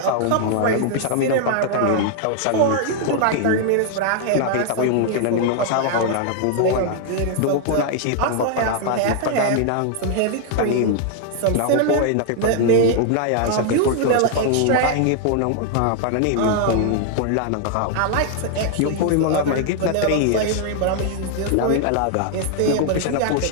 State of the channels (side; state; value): both; different; correlation 0.00